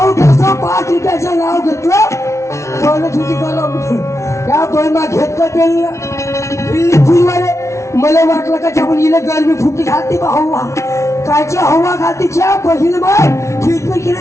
कसं 5 रुपयाचं नाव घेतलं बोलत होती कलम या बहिणा घेतलं ते फुलवाले मला वाटलं का आपण हिला गरमी फुटी घालते बा हवा कायची हवा घालते ज्या बहीण बाय फिरफिर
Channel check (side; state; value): right; late; 0.14 ms